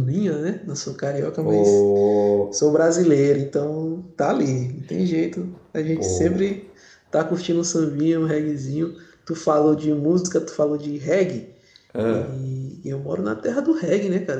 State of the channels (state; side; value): identical; both; correlation 1.00